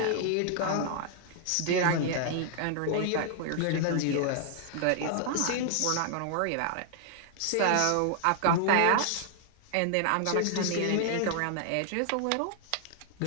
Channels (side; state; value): both; different; correlation 0.00